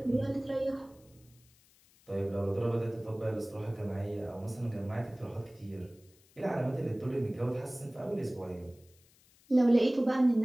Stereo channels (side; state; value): left; noise; hiss, 30 dB below the sound